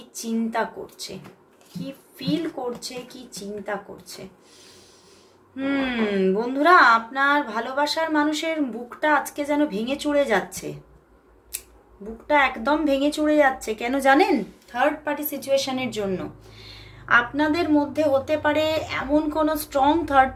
চিন্তা করছে, কি ফিল করছে, কি চিন্তা করছে। বন্ধুরা, আপনার ভালোবাসার মানুষের বুকটা আজকে যেন ভেঙে চুরে যাচ্ছে, বুকটা একদম ভেঙে চুরে যাচ্ছে। কেন জানেন? থার্ড পার্টি সিচুয়েশনের জন্য। আপনাদের মধ্যে হতে পারে এমন কোনো স্ট্রং থার্ড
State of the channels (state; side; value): identical; both; correlation 1.00